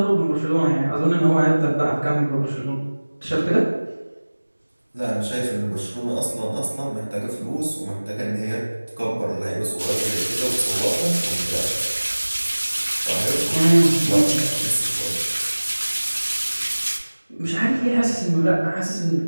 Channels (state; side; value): inverted; both; correlation -1.00